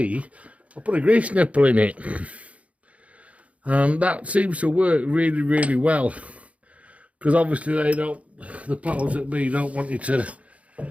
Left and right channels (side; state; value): left; late; 0.065 ms